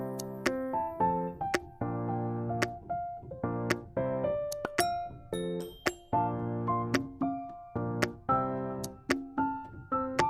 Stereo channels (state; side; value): identical; both; correlation 1.00